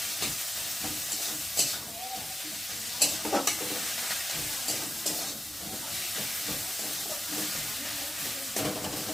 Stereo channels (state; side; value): normal; both; correlation 0.92